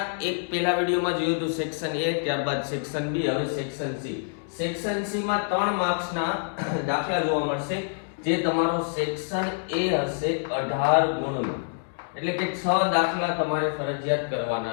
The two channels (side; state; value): right; silent; digital silence